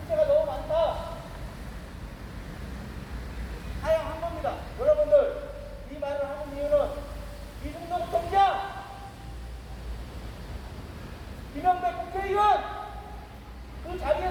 너무 많다. 하향한 겁니다. 여러분들 이 말을 하는 이유는 이중동 총장, 김영배 국회의원 그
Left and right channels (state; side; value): identical; both; correlation 1.00